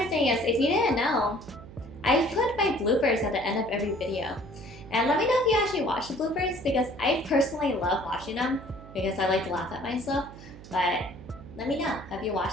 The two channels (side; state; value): right; noise; hum, 17 dB below the sound